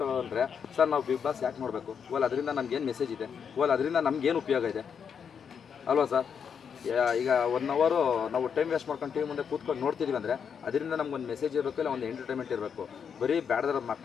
ತಗೊಂಡ್ರೆ ಸರ್, ನಾವು ಬಿಗ್ ಬಾಸ್ ಯಾಕೆ ನೋಡಬೇಕು? ಓಲ್ ಅದರಿಂದ ನಮಗೇನು ಮೆಸೇಜ್ ಇದೆ, ಓಲ್ ಅದರಿಂದ ನಮಗೇನು ಉಪಯೋಗ ಇದೆ ಅಲ್ವಾ ಸರ್? ಈಗ 1 ಅವರ್ ನಾವು ಟೈಮ್ ವೇಸ್ಟ್ ಮಾಡ್ಕೊಂಡು ಟಿವಿ ಮುಂದೆ ಕೂತ್ಕೊಂಡು ನೋಡ್ತಿದ್ದೀವಿ ಅಂದರೆ ಅದರಿಂದ ನಮ್ಗೊಂದು ಮೆಸೇಜ್ ಇರಬೇಕು, ಇಲ್ಲ ಒಂದು ಎಂಟರ್ಟೈನ್ಮೆಂಟ್ ಇರಬೇಕು. ಬರೀ ಬ್ಯಾಡ್ದಾರ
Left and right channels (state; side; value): quieter; right; 7.0 dB